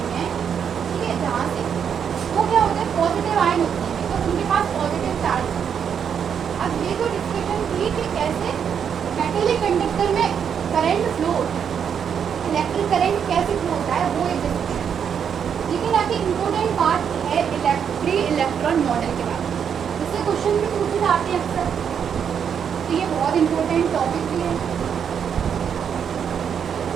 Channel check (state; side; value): quieter; left; 7.7 dB